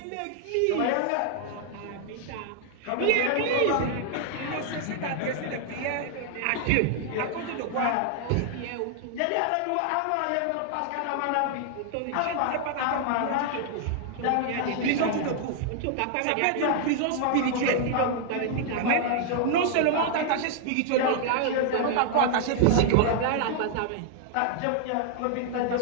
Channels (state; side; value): different; both; correlation 0.00